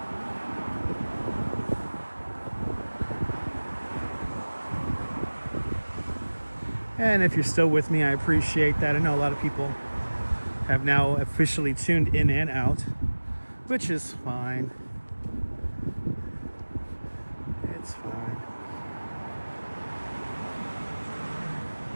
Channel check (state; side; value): inverted; both; correlation -1.00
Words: And if you're still with me, I appreciate that. I know a lot of people have now officially tuned in and out, which is fine. It's fine.